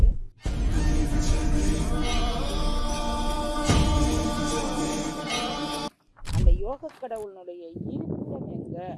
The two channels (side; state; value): both; identical; correlation 1.00